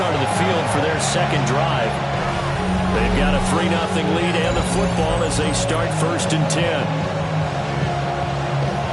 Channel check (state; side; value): identical; both; correlation 1.00